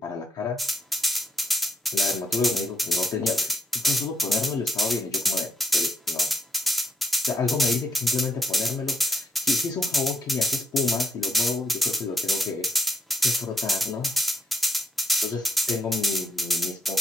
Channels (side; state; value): both; normal; correlation 0.79